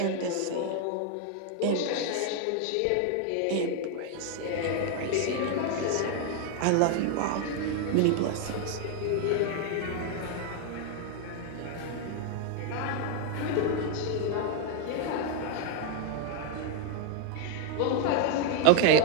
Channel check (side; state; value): both; different; correlation 0.00